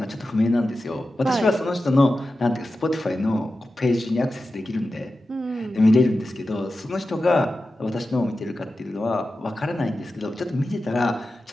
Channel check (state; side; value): normal; both; correlation 0.92